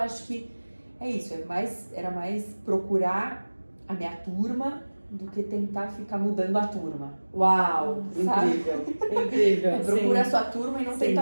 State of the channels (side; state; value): both; inverted; correlation -1.00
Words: que é isso, era mais procurar a minha turma do que tentar ficar mudando a turma. Uau, sabe? incrível, incrível. Procura a sua turma e não